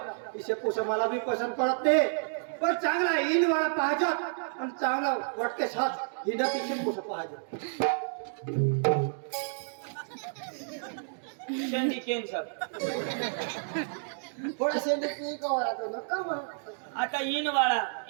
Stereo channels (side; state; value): left; silent; digital silence